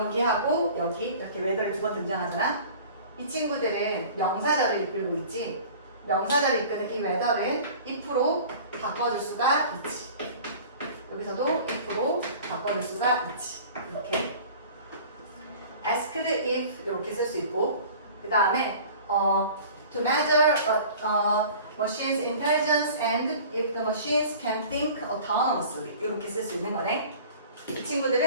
여기 이렇게 웨더리 두 번 등장하잖아. 이 친구들은 명사절을 이끌고 있지. 명사절을 이끄는 이 웨더는 if로 바꿔줄 수가 있지. 여기서도 if로 바꿔줄 수가 있지. 이렇게 asked if 이렇게 쓸 수 있고 그 다음에 to measure machine's intelligence and if the machines can think autonomously 이렇게 쓸 수 있는 거네. 이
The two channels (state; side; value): inverted; both; correlation -0.44